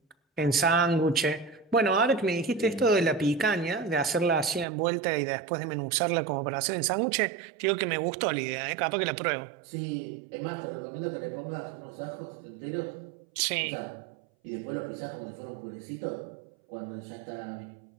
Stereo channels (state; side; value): drops out; left; at 4.7 s